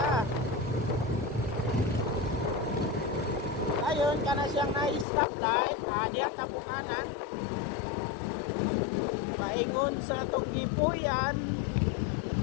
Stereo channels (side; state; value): right; drops out; at 5.1 s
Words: Ayun, kana siyang na-stoplight. Diya kabukanan. Paingon sa itong gipuyan.